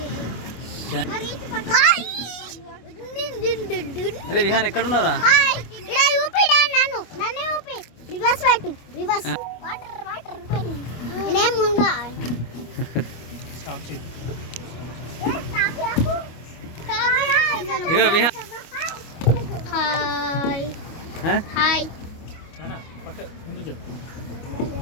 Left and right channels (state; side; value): late; right; 25 ms